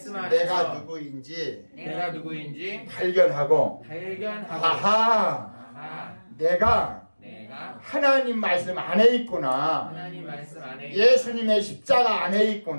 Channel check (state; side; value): inverted; both; correlation -1.00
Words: 안에서 내가 누구인지 내가 누구인지 발견하고 발견하고 아하 내가 하나님 말씀 안에 있구나. 하나님 말씀 안에 예수님의 십자가 안에